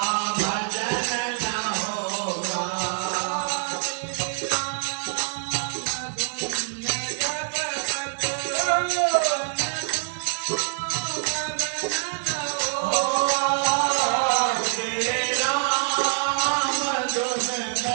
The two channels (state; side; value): silent; left; digital silence